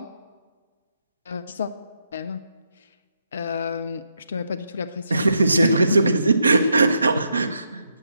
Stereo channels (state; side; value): inverted; both; correlation -0.80